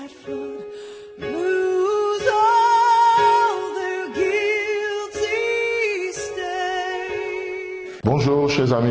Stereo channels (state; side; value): identical; both; correlation 1.00